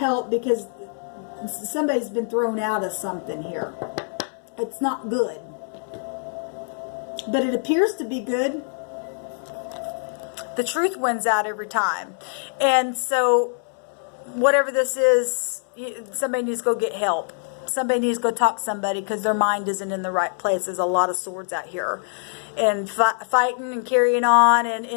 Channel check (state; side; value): silent; right; 63 dB below the other